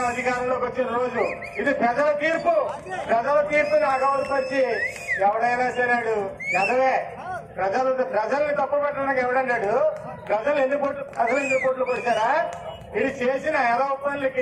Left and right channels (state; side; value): identical; both; correlation 1.00